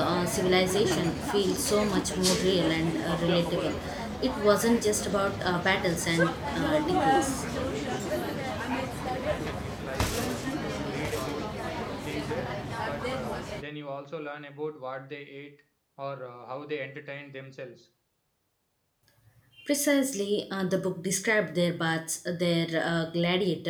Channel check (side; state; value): both; identical; correlation 1.00